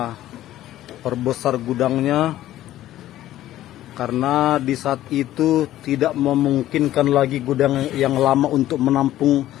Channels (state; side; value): quieter; right; 13.8 dB